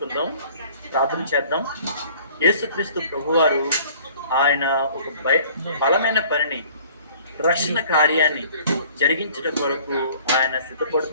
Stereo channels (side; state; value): both; inverted; correlation -0.52